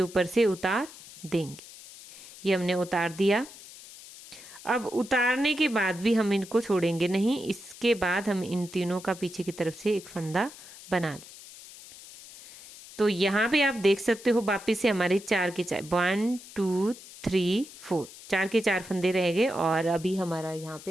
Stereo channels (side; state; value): left; noise; hiss, 17 dB below the sound